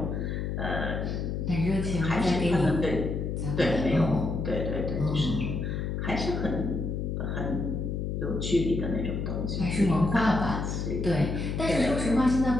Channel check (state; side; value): noise; left; hum, 2 dB below the sound